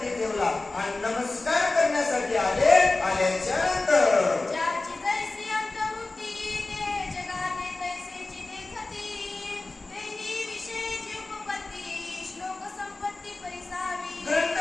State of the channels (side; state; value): right; quieter; 3.2 dB